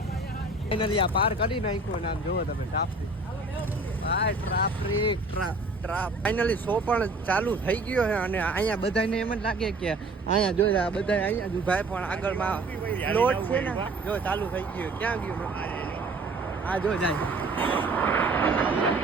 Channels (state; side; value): quieter; left; 3.1 dB